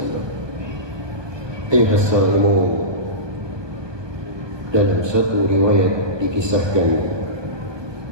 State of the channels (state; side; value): late; left; 1.2 ms